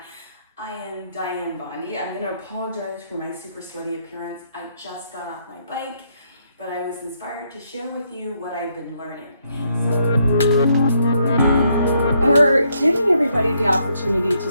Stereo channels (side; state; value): both; inverted; correlation -0.75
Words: I am Dianne Bondy. I'm going to apologize for my super sweaty appearance. I just got off my bike, but I was inspired to share with you what I've been learning. We're giving everybody the opportunity to